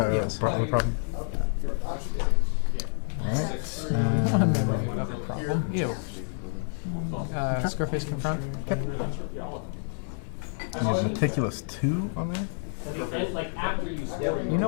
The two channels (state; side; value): silent; right; 59 dB below the other